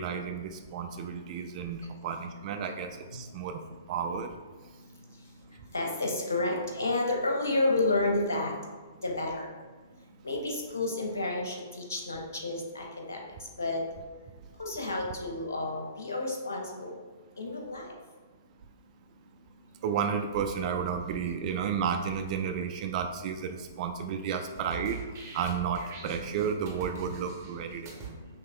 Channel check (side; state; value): both; inverted; correlation -0.44